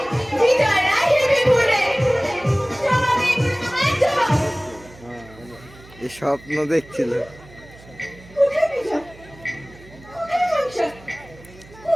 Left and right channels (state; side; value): noise; right; hum, 22 dB below the sound